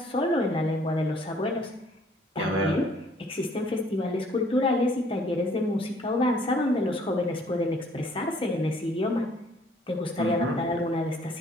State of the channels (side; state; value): both; normal; correlation 0.60